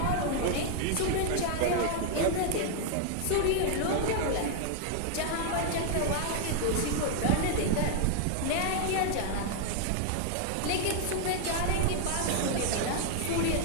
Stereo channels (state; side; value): different; both; correlation 0.00